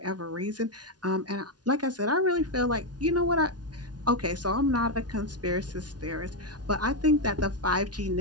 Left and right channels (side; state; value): left; late; 0.69 ms